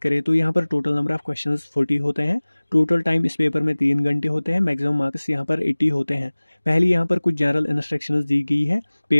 करें तो यहाँ पर टोटल नंबर ऑफ क्वेश्चंस 40 होते हैं। टोटल टाइम इस पेपर में 3 घंटे होते हैं। मैक्सिमम मार्क्स यहाँ पर 80 होते हैं। पहले यहाँ पर कुछ जनरल इंस्ट्रक्शंस दी गई है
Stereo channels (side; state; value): both; inverted; correlation -1.00